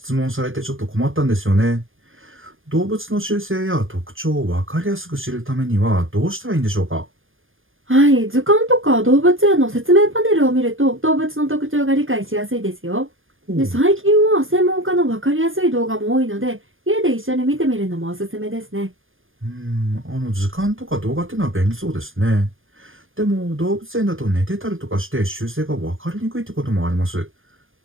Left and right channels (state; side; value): late; left; 0.59 ms